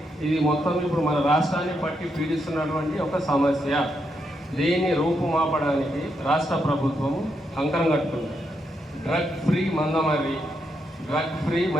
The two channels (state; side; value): normal; both; correlation 0.81